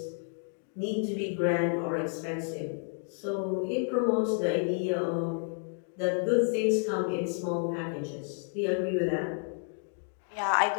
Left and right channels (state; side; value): silent; right; 57 dB below the other